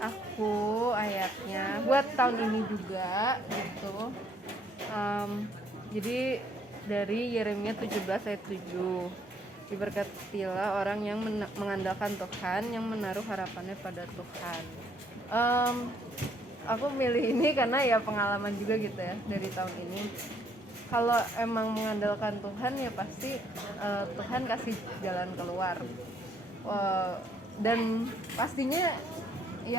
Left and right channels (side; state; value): both; normal; correlation 0.67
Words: ayatnya buat tahun ini juga gitu. Jadi dari Yeremia 17 ayat 7. Diberkatilah orang yang mengandalkan Tuhan, yang menaruh harapannya pada Tuhan. Aku milih ini karena ya pengalaman juga gitu ya dari tahun ini. Kalau emang mengandalkan Tuhan ya pasti Tuhan kasih jalan keluar. Dan pastinya